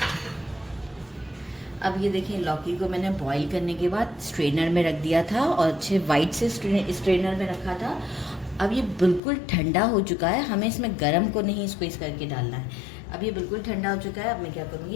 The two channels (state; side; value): drops out; right; at 9.2 s